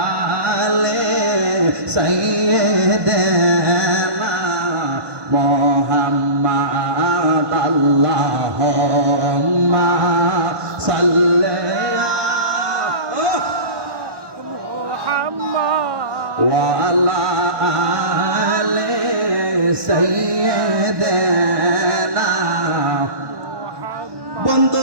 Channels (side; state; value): left; late; 1.2 ms